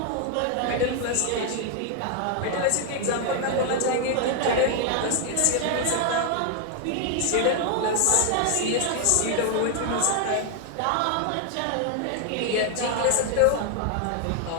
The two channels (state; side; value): different; both; correlation 0.00